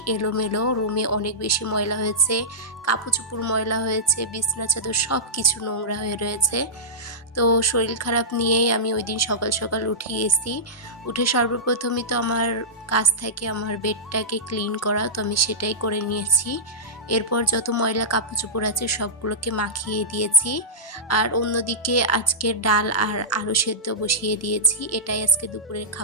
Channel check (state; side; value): normal; both; correlation -0.14